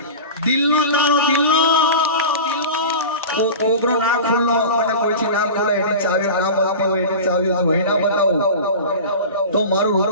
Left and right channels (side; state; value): both; inverted; correlation -0.31